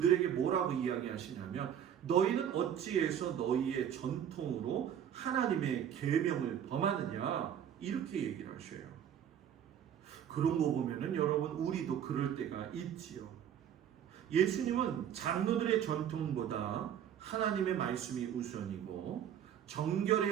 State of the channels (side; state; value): left; quieter; 9.3 dB